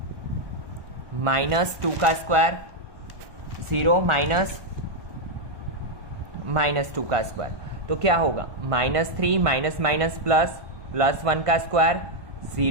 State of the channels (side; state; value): left; late; 1.2 ms